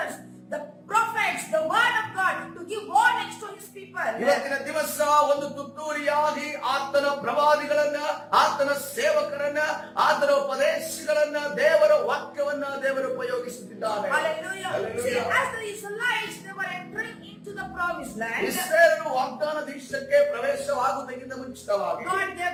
the prophets, the word of God to give warnings to his people. ಇವತ್ತಿನ ದಿವಸ ಒಂದು ತುತ್ತೂರಿಯಾಗಿ ಆತನ ಪ್ರವಾದಿಗಳನ್ನ, ಆತನ ಸೇವಕರನ್ನ, ಆತನ ಉಪದೇಶಗಳನ್ನ, ದೇವರ ವಾಕ್ಯವನ್ನ ದೇವರು ಉಪಯೋಗಿಸುತ್ತಿದ್ದಾರೆ. Hallelujah. See, as the Israelites, they were entering into the promised land. ಇಸ್ರಾಯೇಲರು ವಾಗ್ದಾನ ದೇಶಕ್ಕೆ ಪ್ರವೇಶವಾಗುವುದಕ್ಕಿಂತ ಮುಂಚಿತವಾಗಿ God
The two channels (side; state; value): both; identical; correlation 1.00